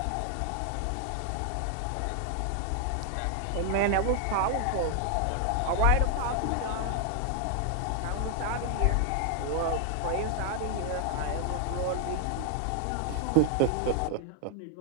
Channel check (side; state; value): both; different; correlation 0.00